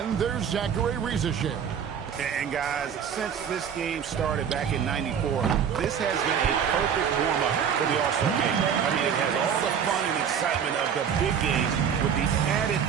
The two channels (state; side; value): quieter; left; 7.8 dB